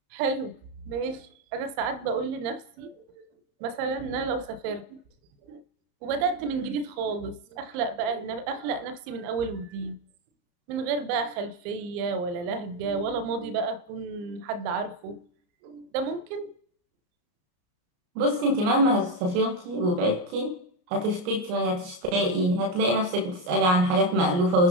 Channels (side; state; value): left; late; 34 ms